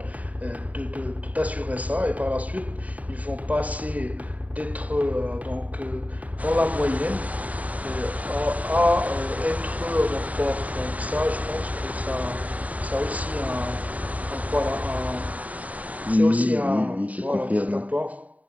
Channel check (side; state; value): left; late; 0.070 ms